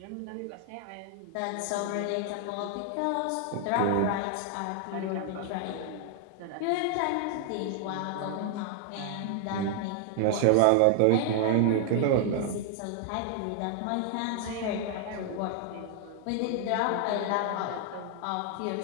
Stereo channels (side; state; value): both; different; correlation 0.00